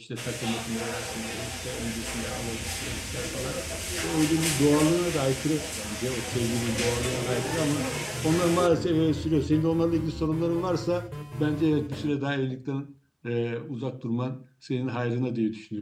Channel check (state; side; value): identical; both; correlation 1.00